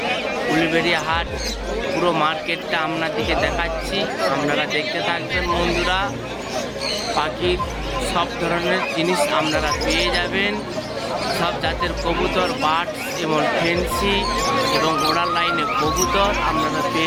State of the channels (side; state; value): both; identical; correlation 1.00